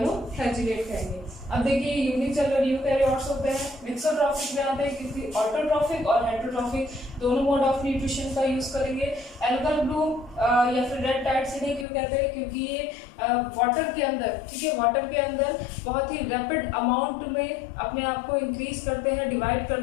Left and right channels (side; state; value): right; drops out; at 11.9 s